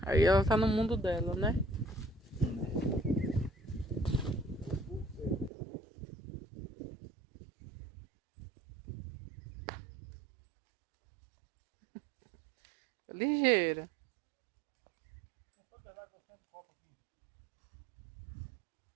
Aí ela tá no mundo dela, né? Ligeira.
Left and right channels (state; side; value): drops out; left; at 5.5 s